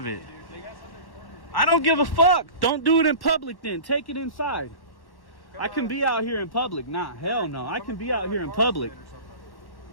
it. I don't give a fuck. Don't do it in public then. Take it inside. I can be out here in public. Nah, hell no. I can be out here in public.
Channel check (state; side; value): late; right; 1.1 ms